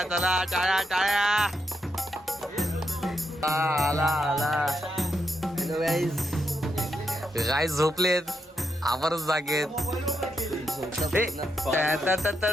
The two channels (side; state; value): both; normal; correlation 0.82